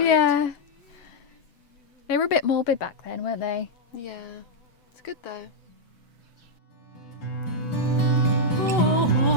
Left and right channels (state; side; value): late; right; 7.9 ms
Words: Yeah. They were a bit morbid back then, weren't they? Yeah, it's good though. All